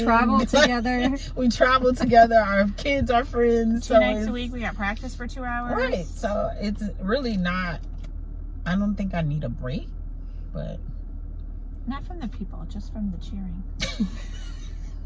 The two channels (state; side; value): identical; both; correlation 1.00